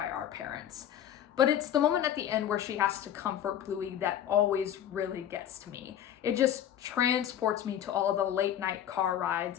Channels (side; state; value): right; quieter; 10.2 dB